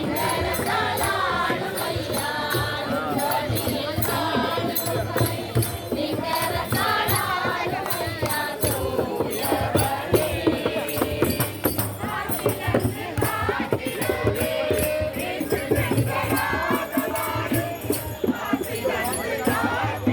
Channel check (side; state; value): both; identical; correlation 1.00